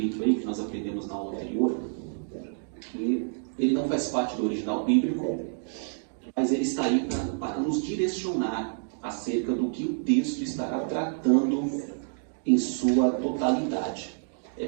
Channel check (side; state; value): left; silent; digital silence